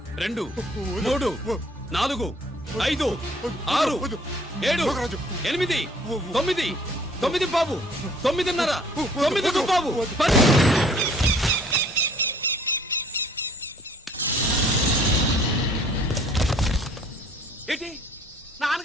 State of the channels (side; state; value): both; normal; correlation 0.56